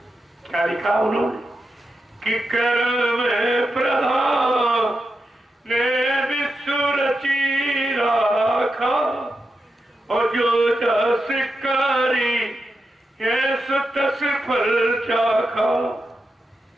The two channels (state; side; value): normal; both; correlation 0.88